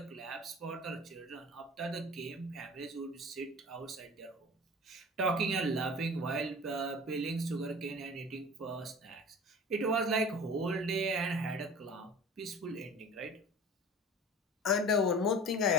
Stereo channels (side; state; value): both; normal; correlation 0.40